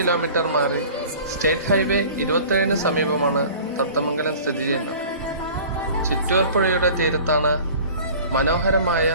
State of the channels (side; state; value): both; inverted; correlation -0.43